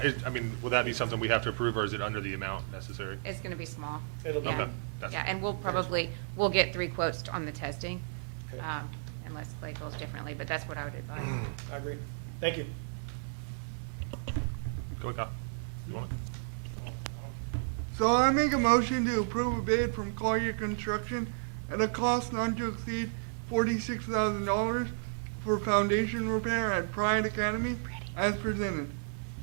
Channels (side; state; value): left; silent; 56 dB below the other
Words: mean, will that be something we have to approve, or is it under the amount necessary? It's gonna be small. It'll be Yeah. That's- Yeah, and we'll very small. probably, we'll get 3 quotes on the testing. Okay. Unless Clay feels differently, but that's what I would advise. I agree. Thank you. Go ahead, Kyle. You want it? So I make a motion to approve a bid from Collier Construction at a cost not to exceed $46,000 for foundation repair at Pride Academy as presented.